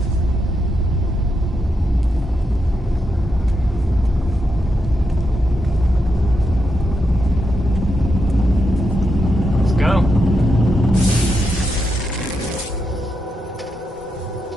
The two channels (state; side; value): normal; both; correlation 0.84